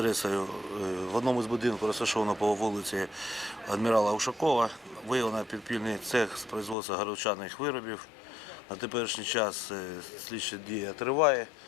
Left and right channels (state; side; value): drops out; right; at 6.8 s